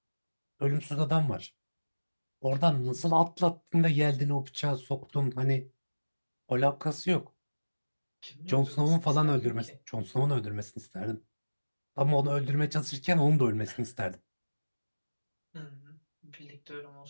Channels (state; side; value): inverted; both; correlation -1.00